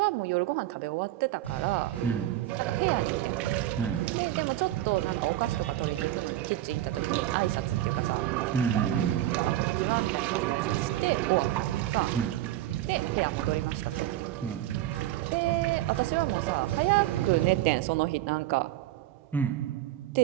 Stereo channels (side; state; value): left; quieter; 13.9 dB